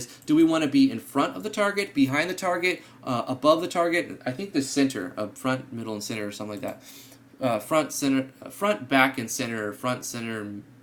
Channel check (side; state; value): both; identical; correlation 1.00